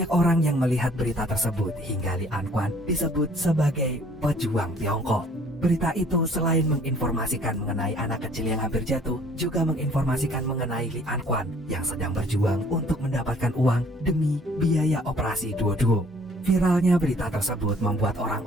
orang yang melihat berita tersebut hingga Li Anquan disebut sebagai pejuang Tiongkok. Berita itu selain menginformasikan mengenai anak kecil yang hampir jatuh, juga menginformasikan mengenai Li Anquan yang sedang berjuang untuk mendapatkan uang demi biaya operasi Duoduo. Viralnya berita tersebut membuat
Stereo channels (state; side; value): normal; both; correlation 0.57